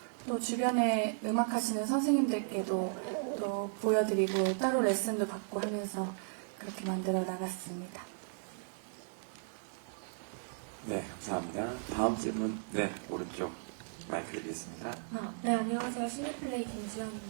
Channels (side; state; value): left; silent; digital silence